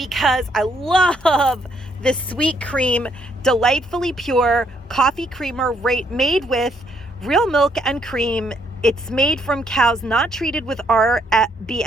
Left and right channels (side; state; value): both; normal; correlation 0.71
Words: I love this sweet cream, delightfully pure coffee creamer made with real milk and cream. It's made from cows not treated with